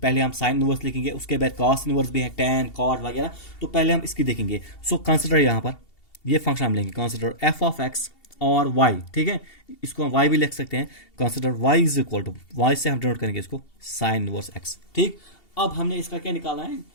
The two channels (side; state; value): right; late; 2.7 ms